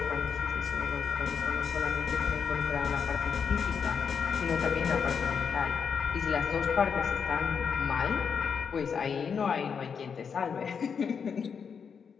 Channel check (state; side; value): quieter; right; 6.5 dB